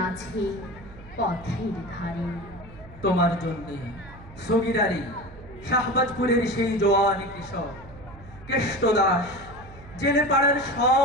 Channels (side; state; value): right; noise; hum, 18 dB below the sound